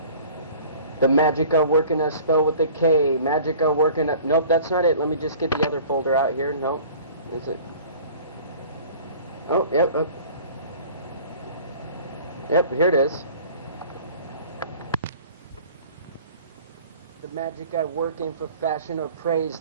The Magica working a spell with a K. Magica working a... Nope, that's not it. Let me just get the other folder out here. Nope. Is it? Oh, yep. Yep, here it is. The magic I work in for fashion or praise,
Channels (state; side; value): inverted; both; correlation -0.46